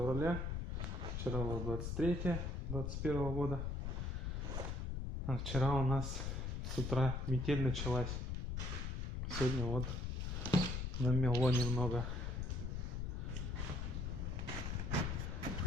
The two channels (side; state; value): left; noise; rumble, 3 dB below the sound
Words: вчера было 23 21 года. А вчера у нас с утра метель началась. Сегодня вот намело немного.